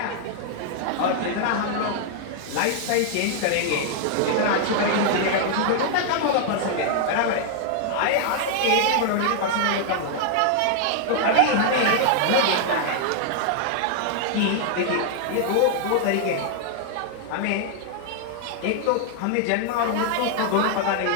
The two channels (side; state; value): both; different; correlation 0.00